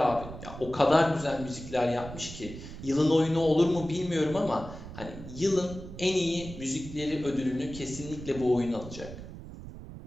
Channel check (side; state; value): right; noise; rumble, 12 dB below the sound